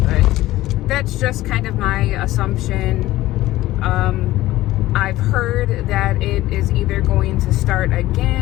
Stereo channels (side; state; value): right; quieter; 16.4 dB